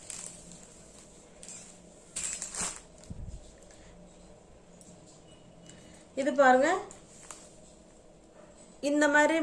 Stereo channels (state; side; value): identical; both; correlation 1.00